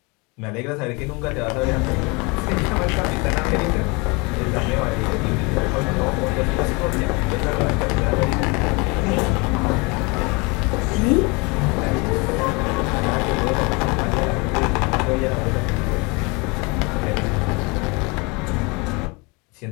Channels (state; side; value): quieter; right; 28.0 dB